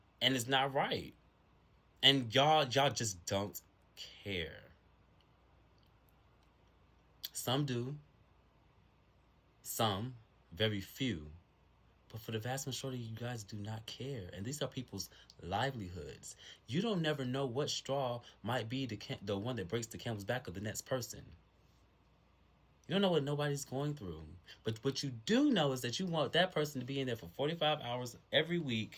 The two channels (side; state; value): both; identical; correlation 1.00